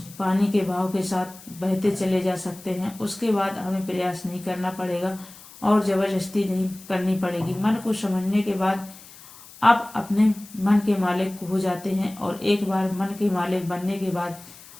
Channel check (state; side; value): noise; left; hiss, 20 dB below the sound